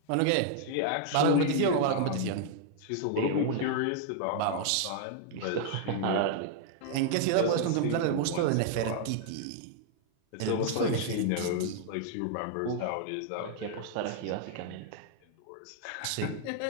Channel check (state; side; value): different; both; correlation 0.00